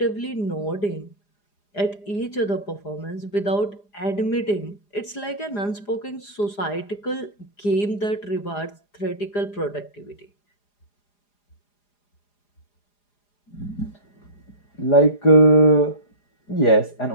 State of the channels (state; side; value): late; right; 4.9 ms